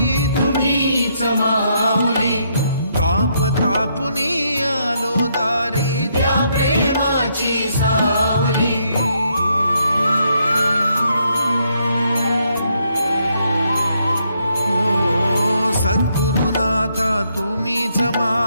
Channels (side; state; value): both; inverted; correlation -0.75